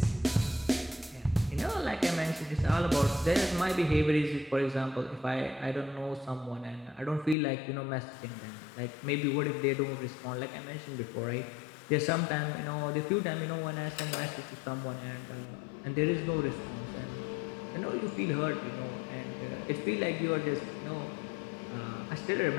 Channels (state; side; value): drops out; right; at 7.4 s